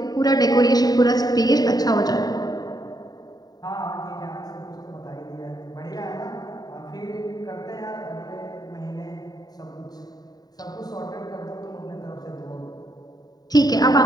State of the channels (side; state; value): right; late; 0.19 ms